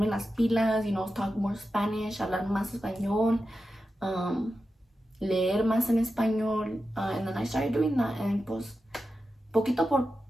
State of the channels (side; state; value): both; normal; correlation 0.91